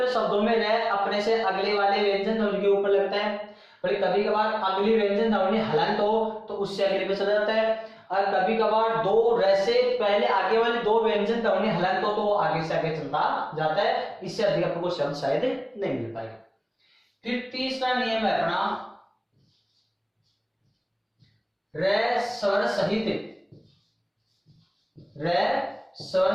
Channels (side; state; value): both; identical; correlation 1.00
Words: शब्दों में रे अपने से अगले वाले व्यंजन ध्वनि के ऊपर लगता है, पर कभी कभार अगली व्यंजन ध्वनि हलंत हो तो उससे अगले पे चला जाता है, और कभी कभार दो रे से पहले आगे वाले दो व्यंजन ध्वनि हलंत हो तो वो आगे से आगे चलता जाता है। इससे अधिक आपको शब्द शायद नहीं मिल पाएगा। फिर तीसरा नियम है अपना रे स्वर सहित। रे स्वर